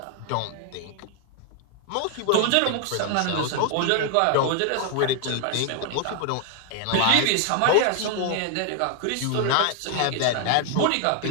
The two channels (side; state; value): both; different; correlation 0.00